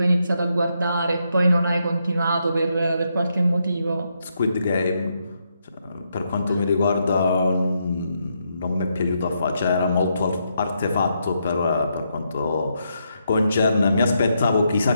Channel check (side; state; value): both; inverted; correlation -0.80